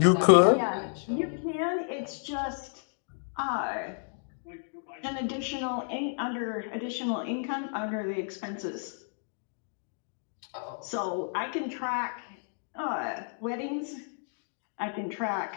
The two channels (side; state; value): right; silent; digital silence